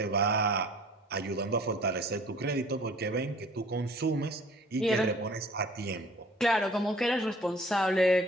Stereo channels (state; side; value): normal; both; correlation 0.51